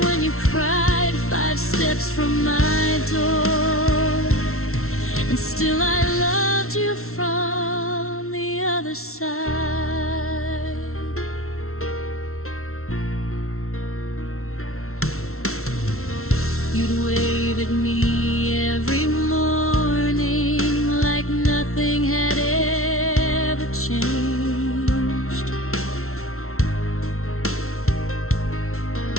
when you cried. Five steps from my door, and still I loved you from the other side. You'd wave at me every morning like nothing had ever changed,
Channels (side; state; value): right; late; 0.63 ms